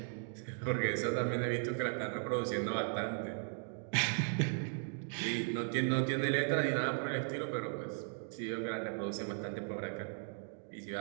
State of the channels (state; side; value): silent; left; 53 dB below the other